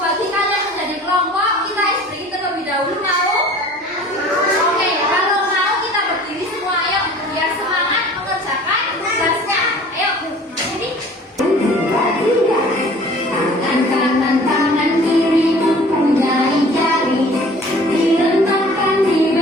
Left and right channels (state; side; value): normal; both; correlation 0.48